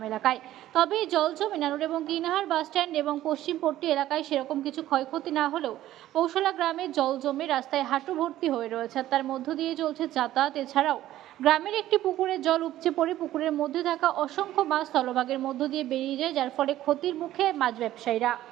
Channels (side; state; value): left; quieter; 13.9 dB